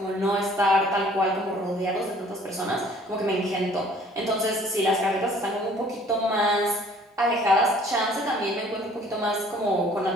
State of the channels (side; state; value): both; normal; correlation 0.55